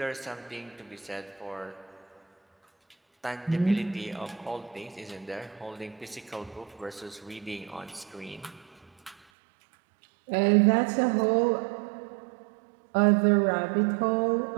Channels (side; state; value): left; drops out; at 9.2 s